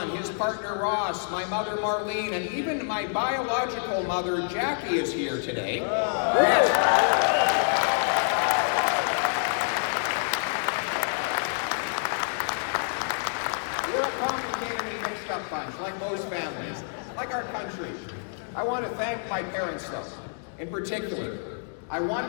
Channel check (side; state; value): right; silent; digital silence